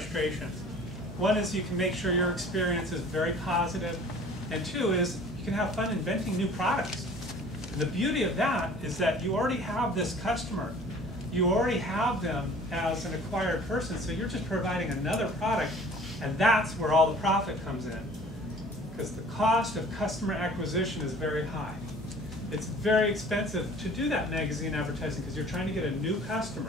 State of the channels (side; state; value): both; normal; correlation 0.48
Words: One is you can make sure your experience is very positive, and two is you can have fun inventing new products. And the beauty of that is that you already have this customer. You already have them as an acquired person, so you're just providing another product, and that's where all the profit comes in. Because the cost of customer acquisition is very high. It's very expensive to do that magazine advertising because you're trying to get a new